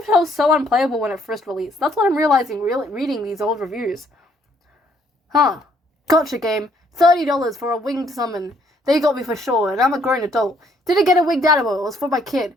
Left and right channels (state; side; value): normal; both; correlation 0.67